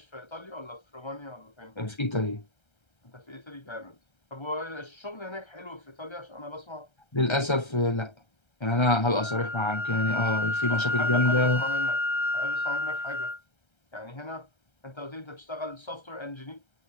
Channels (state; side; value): late; right; 1.3 ms